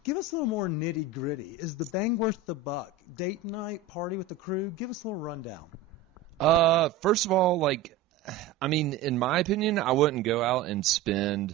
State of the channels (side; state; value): left; quieter; 5.9 dB